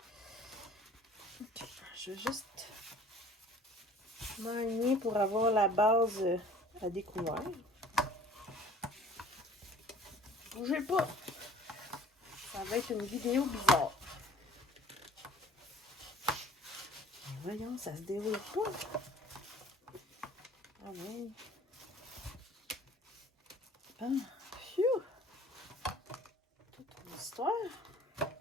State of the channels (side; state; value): both; normal; correlation 0.50